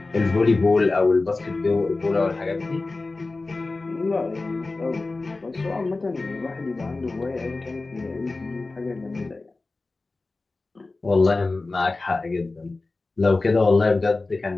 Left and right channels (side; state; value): right; quieter; 3.4 dB